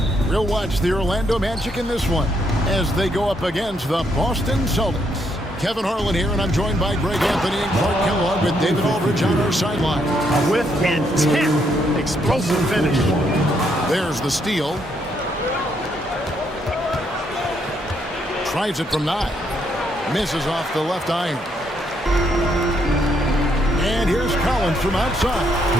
We'll watch the Orlando Magic in this one as they go up against the Boston Celtics. Kevin Harlan here, and I'm joined by Greg Anthony and Clark Kellogg with David Aldridge on our sideline. With intent, explosive finish. There's the steal. Tries it from 9. Misses off the left iron. And here's Collins from outside.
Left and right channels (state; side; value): normal; both; correlation 0.74